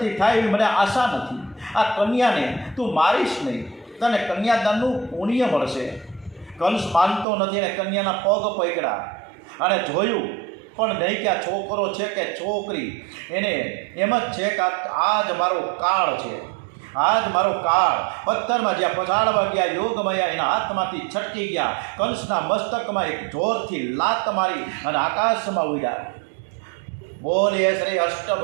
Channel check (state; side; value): drops out; left; at 7.2 s